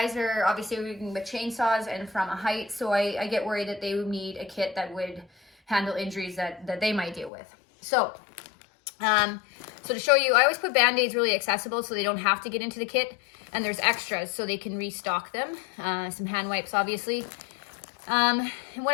are obviously working with chainsaws and from a height, so I get worried that they would need a kit that would handle injuries that they might deal with. So to show you, I always put Band-Aids really accessible so they don't have to get into the kit, and there's extras so they can restock them. Some hand wipes, obviously. And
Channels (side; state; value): right; drops out; at 7.3 s